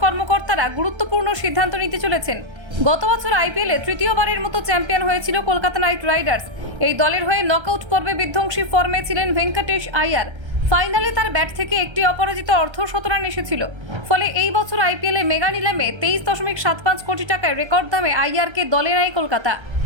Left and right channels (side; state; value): left; late; 1.3 ms